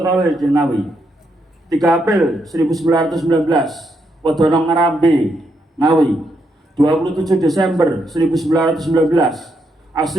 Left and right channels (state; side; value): normal; both; correlation 0.79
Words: di Ngawi. 3 April 1919, Wedono Ngarambe, Ngawi. 27 Desember 1919,